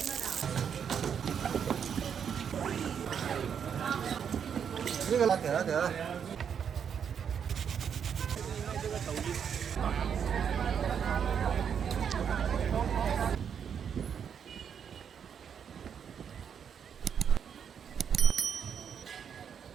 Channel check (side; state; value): left; quieter; 7.6 dB